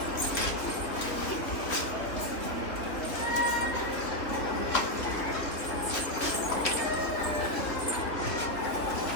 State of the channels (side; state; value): right; late; 3.1 ms